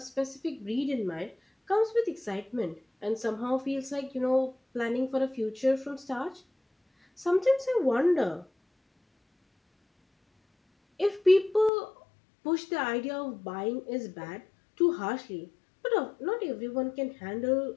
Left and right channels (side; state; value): right; drops out; at 11.7 s